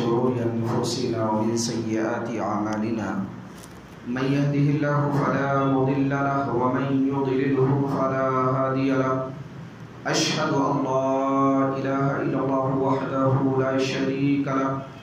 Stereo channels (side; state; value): both; identical; correlation 1.00